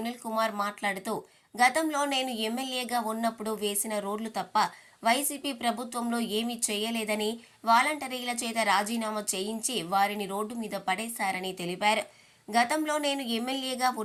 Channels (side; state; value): both; identical; correlation 1.00